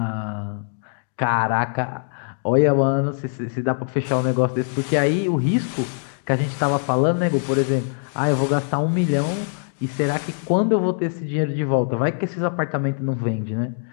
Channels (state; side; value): silent; right; digital silence